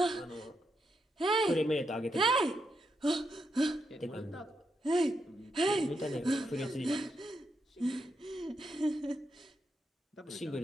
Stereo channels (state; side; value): normal; both; correlation 0.82